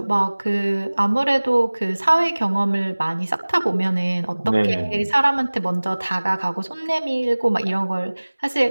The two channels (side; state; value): both; inverted; correlation -1.00